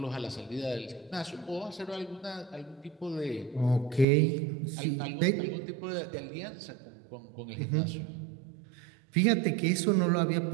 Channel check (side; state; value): left; drops out; at 4.0 s